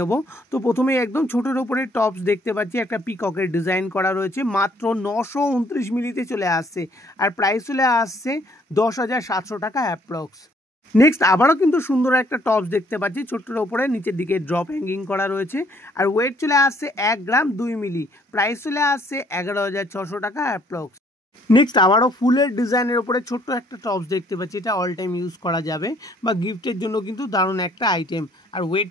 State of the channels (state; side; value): normal; both; correlation 0.63